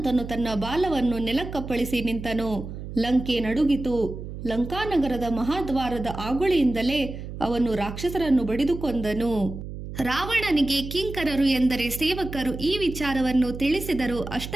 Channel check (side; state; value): right; noise; hum, 9 dB below the sound